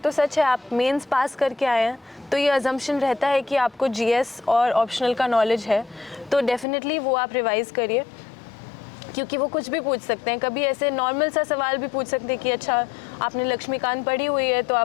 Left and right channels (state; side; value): drops out; right; at 6.7 s